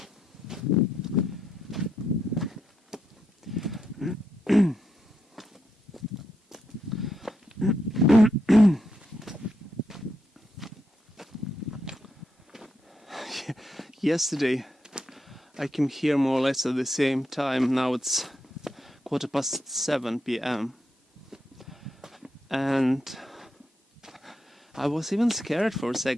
Yesterday I came here more or less at the same time. Now it's 7:15 p.m. and I was even scared for a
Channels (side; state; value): both; normal; correlation 0.82